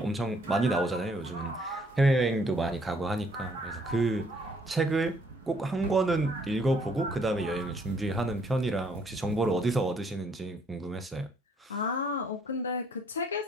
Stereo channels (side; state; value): both; normal; correlation 0.65